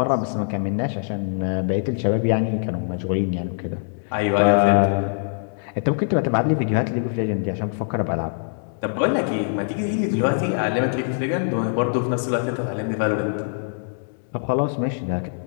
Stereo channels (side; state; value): right; silent; digital silence